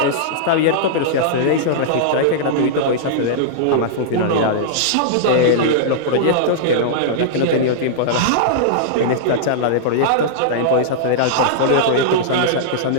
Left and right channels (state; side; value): different; both; correlation -0.02